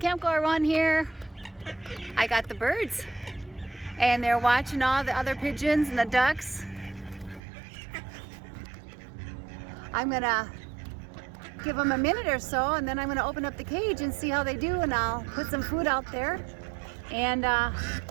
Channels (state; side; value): drops out; left; at 7.4 s